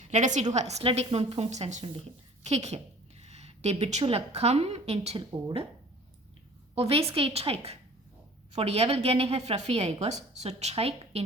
Lad os sige, du har slet ikke nogen punktsandsynlighed. Kig her. Det betyder, kom ind til 8. Og hvad skal I trække? Fordi jeg vil gerne have fra 4, ikke også? Så træk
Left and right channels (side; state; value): both; normal; correlation 0.48